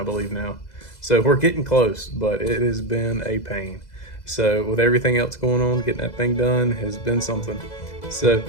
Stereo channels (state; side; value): late; right; 2.0 ms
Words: believe now. So we're getting close, but it has been a pain. So with everything else going on, getting that thing done has been something. So